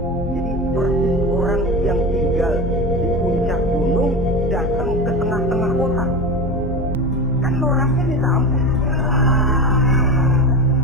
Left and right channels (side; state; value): both; normal; correlation 0.25